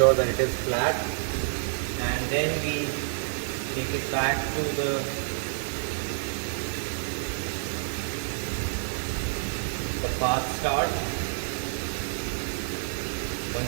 that it is flat, and then we take it back to the path start.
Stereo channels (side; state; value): left; silent; digital silence